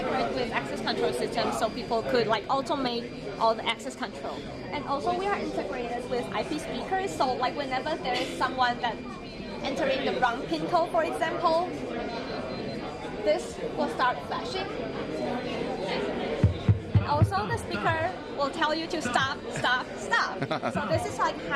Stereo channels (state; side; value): identical; both; correlation 1.00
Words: with access control systems, so people could like automate all the access control. And also we are integrated with IP speakers, so like whenever there is someone that entering the wrong pin code, for example, this will start flashing. And also the speaker will tell you to stop, stop, stop. So this is like